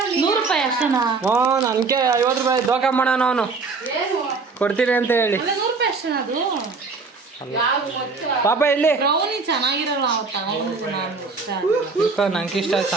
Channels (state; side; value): quieter; left; 4.4 dB